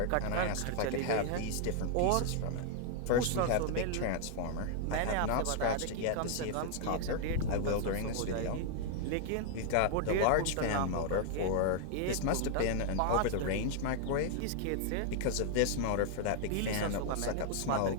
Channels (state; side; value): different; both; correlation 0.00